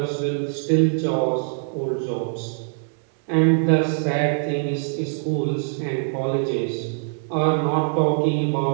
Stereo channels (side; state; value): left; silent; digital silence